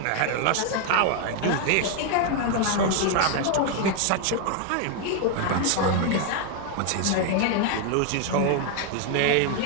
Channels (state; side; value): different; both; correlation 0.01